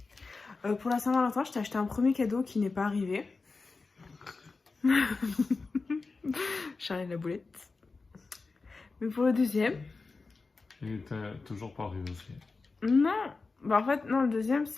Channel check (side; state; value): right; quieter; 4.0 dB